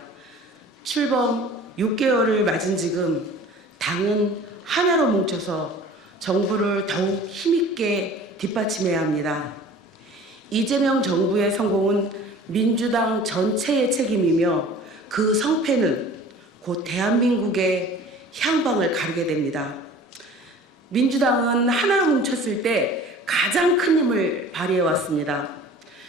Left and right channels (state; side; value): normal; both; correlation 0.44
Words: 출범 6개월을 맞은 지금 당은 하나로 뭉쳐서 정부를 더욱 힘있게 뒷받침해야 합니다. 이재명 정부의 성공은 민주당 전체의 책임이며 그 성패는 곧 대한민국의 향방을 가르게 됩니다. 민주당은 하나로 뭉쳤을 때 가장 큰 힘을 발휘해왔습니다.